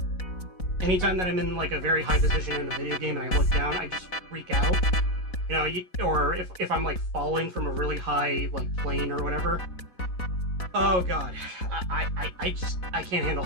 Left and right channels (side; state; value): right; late; 4.1 ms